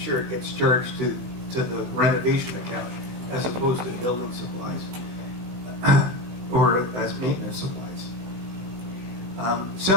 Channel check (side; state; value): left; late; 16 ms